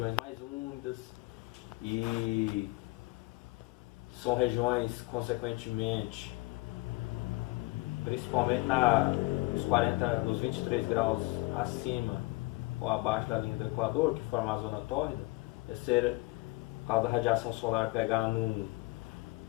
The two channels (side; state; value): right; quieter; 23.1 dB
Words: mais úmidas e são regiões, consequentemente, principalmente nos 23 graus acima ou abaixo da linha do Equador, que forma a zona tórrida, por causa da radiação solar pegar num